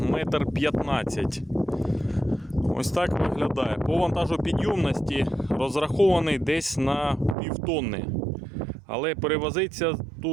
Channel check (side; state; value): left; drops out; at 7.4 s